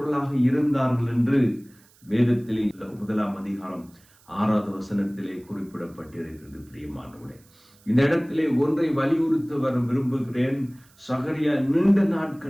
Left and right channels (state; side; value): noise; right; hiss, 30 dB below the sound